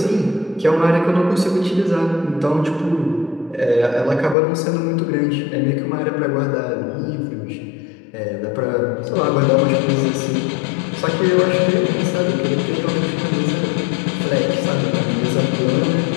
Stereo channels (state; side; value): drops out; right; at 4.4 s